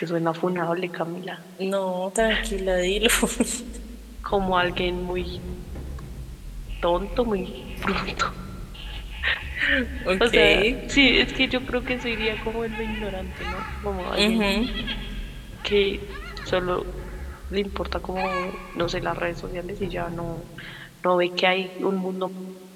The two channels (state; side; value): identical; both; correlation 1.00